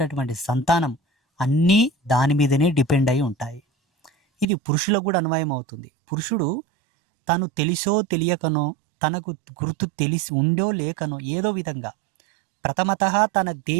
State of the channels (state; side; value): drops out; left; at 4.5 s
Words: సంతానం అన్నీ దాని మీదనే డిపెండ్ అయి ఉంటాయి. ఇది పురుషులకు కూడా అన్వయం అవుతుంది. పురుషుడు తను తెలిసో తెలియకనో, తనకు గుర్తు తెలిసి ఉండో లేకనో ఏదో విధంగా ప్రథమతః తన